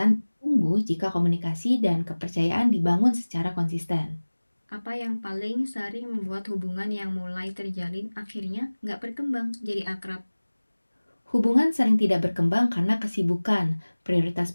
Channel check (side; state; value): both; inverted; correlation -1.00